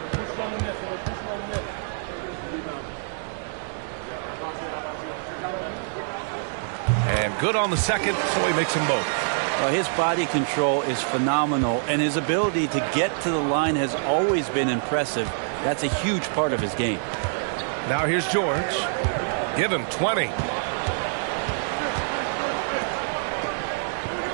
And good on the second, so he makes them both. Well, his body control is phenomenal, and his ability to get to the line has always been impressive. That's a huge part of his game. Now here's George. Give him 20.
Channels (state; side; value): silent; left; digital silence